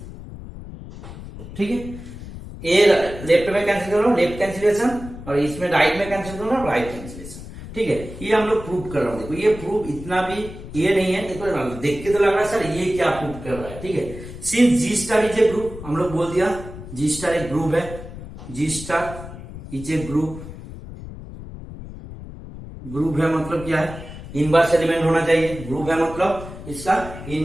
ठीक है। ए लेफ्ट में कैंसिल कर रहा हूं लेफ्ट कैंसिलेशन, और इसमें राइट में कैंसिल कर रहा हूं राइट कैंसिलेशन, ठीक है। ये हम लोग प्रूव कर रहा हूं, देखो ये प्रूव इतना भी ये नहीं है, देखो देख के तो लग रहा है सर ये क्या प्रूव कर रहा है, ठीक है। Since G star is a group, हम लोग बोल दिया जी स्टार एक ग्रुप है, G star is a group है मतलब क्या है, इनवर्स एलिमेंट होना चाहिए, ग्रुप है मतलब इसका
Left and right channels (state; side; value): noise; left; rumble, 13 dB below the sound